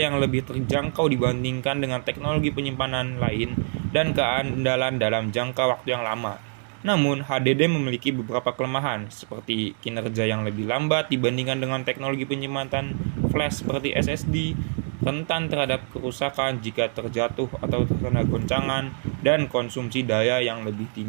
lebih terjangkau dibandingkan dengan teknologi penyimpanan lain, dan keandalan dalam jangka waktu yang lama. Namun, HDD memiliki beberapa kelemahan, seperti kinerja yang lebih lambat dibandingkan dengan teknologi penyimpanan flash seperti SSD, rentan terhadap kerusakan jika terjatuh atau terkena goncangan, dan konsumsi daya yang lebih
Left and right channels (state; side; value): silent; left; 62 dB below the other